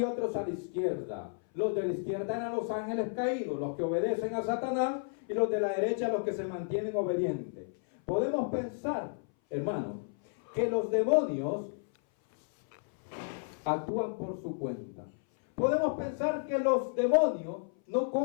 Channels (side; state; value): right; silent; 56 dB below the other